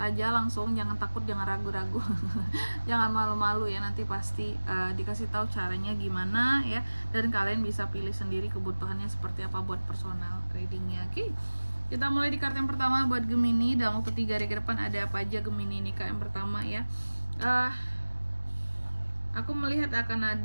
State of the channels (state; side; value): inverted; both; correlation -1.00